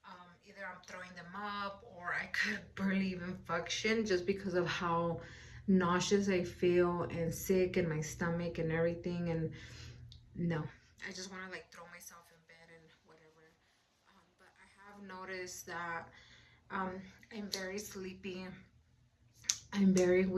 either I'm throwing them up, or I could barely even function just because of how nauseous I feel and sick in my stomach and everything. And no, I just want to like throw myself in bed and whatever. But I have noticed that um, I'm very sleepy. I'm very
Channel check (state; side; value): identical; both; correlation 1.00